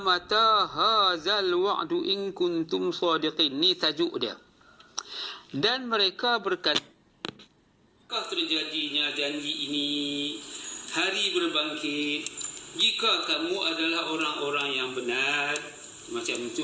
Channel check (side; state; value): both; identical; correlation 1.00